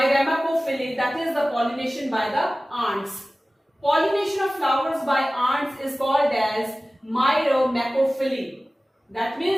that is the pollination by the ants. Pollination of flowers by ants is called as Myrmecophily. That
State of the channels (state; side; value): normal; both; correlation 0.97